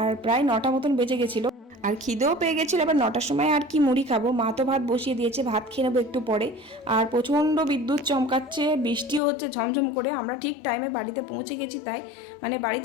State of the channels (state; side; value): drops out; right; at 9.2 s